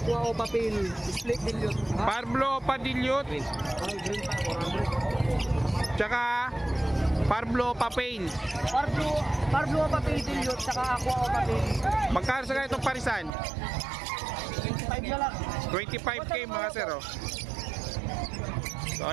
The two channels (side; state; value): left; drops out; at 13.3 s